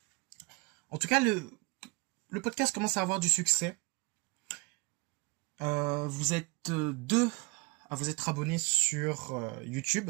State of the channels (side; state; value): left; quieter; 28.3 dB